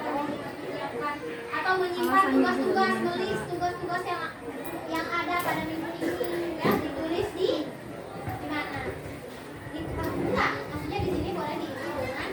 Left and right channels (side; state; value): both; identical; correlation 1.00